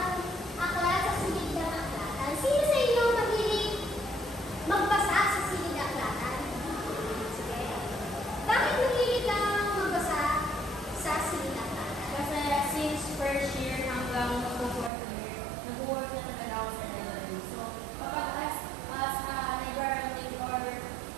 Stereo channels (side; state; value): left; drops out; at 14.9 s